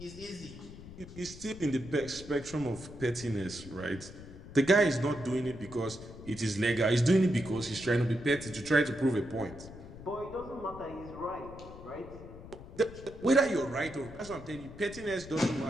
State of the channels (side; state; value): left; noise; rumble, 15 dB below the sound